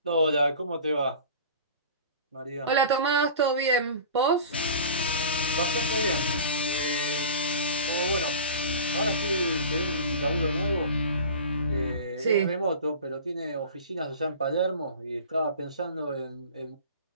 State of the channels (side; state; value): both; inverted; correlation -0.39